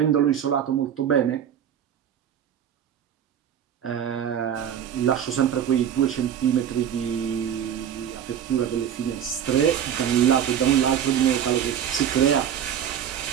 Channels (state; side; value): quieter; left; 9.2 dB